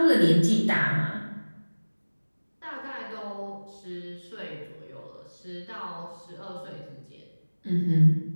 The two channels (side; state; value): both; inverted; correlation -1.00